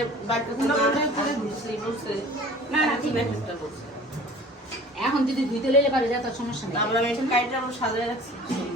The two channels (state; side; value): normal; both; correlation 0.45